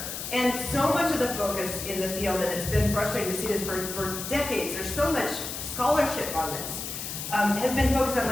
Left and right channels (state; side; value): noise; left; hiss, 6 dB below the sound